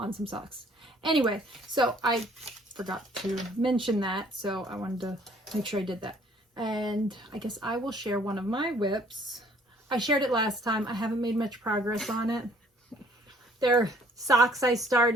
some socks. Anyway, so I forgot to mention that, so I wanted to make sure I did that. And I guess I will share one of my whips. I shared it last time. I haven't made much progress on it. They're socks I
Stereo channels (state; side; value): normal; both; correlation 0.59